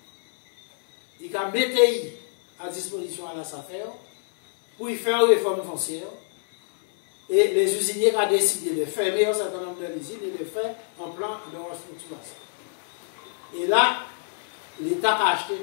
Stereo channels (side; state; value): right; silent; 61 dB below the other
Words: Il a mis à disposition à la SAFER pour y faire une réforme foncière. Et les usiniers ont décidé de fermer un certain nombre d'usines et de faire un plan de restructuration. Et là, l'État a acheté